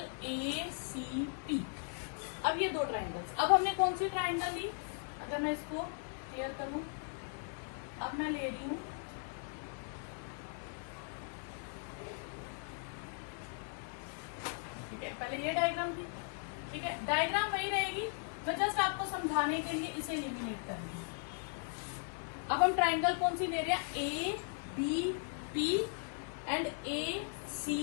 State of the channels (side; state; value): right; silent; 52 dB below the other